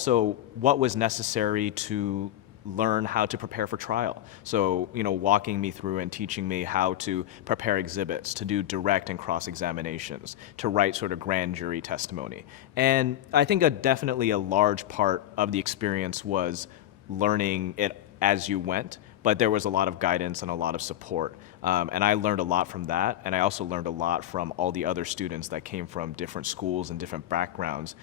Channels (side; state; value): right; quieter; 12.7 dB